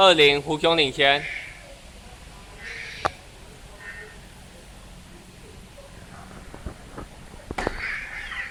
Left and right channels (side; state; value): both; identical; correlation 1.00